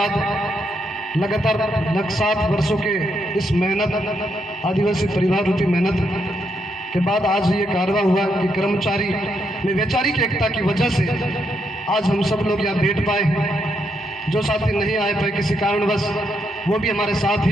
लगातार 7 वर्षों के इस मेहनत, आदिवासी परिवार रूपी मेहनत के बाद आज ये कारवा हुआ कि कर्मचारी में वैचारिक एकता की वजह से आज हम सब लोग यहाँ बैठ पाए। जो साथी नहीं आए पाए किसी कारणवश, वो भी हमारे साथ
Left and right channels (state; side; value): normal; both; correlation 0.78